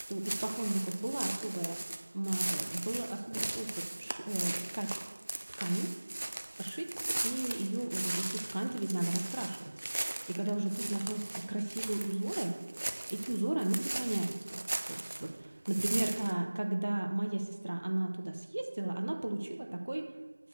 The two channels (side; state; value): both; inverted; correlation -1.00